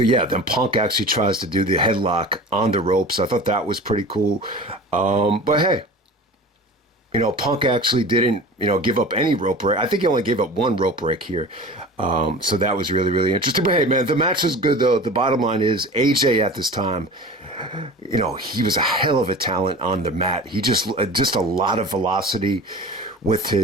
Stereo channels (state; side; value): normal; both; correlation 0.37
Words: yeah, then Punk actually tries to do the headlock on the ropes. I thought that was pretty cool. But hey, Punk actually didn't, give up any rope break. I think he only gave up one rope break here. So that was really, really interesting. But hey, man, the match was good, though. The bottom line is AJ at this time, he was a hell of a talent on the mat. He just a lot of velocity with